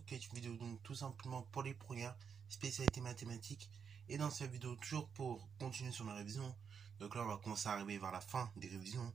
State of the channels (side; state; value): left; quieter; 6.8 dB